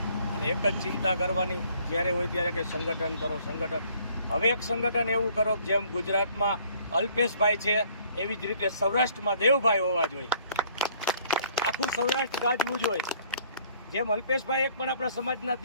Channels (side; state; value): both; inverted; correlation -0.60